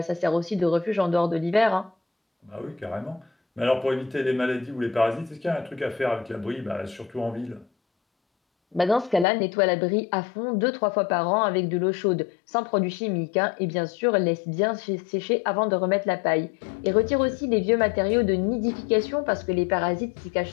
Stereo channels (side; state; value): right; drops out; at 9.2 s